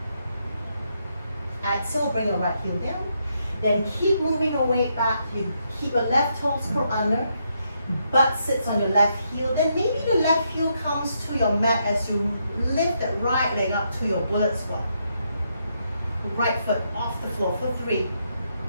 Exhale, bring your right heel down. Then keep moving your weight back. You keep your left toes curled under. Butt sits on your left heel. Then maybe the left heel comes to your mat as you lift that right leg up to your bullet squat. Right foot off the floor for 3,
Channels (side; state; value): both; inverted; correlation -0.78